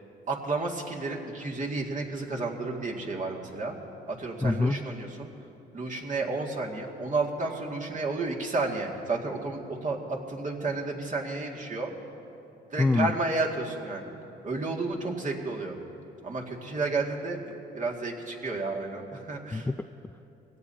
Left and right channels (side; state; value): both; normal; correlation 0.62